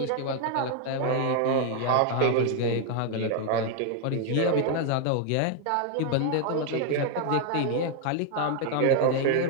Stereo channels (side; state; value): both; different; correlation 0.00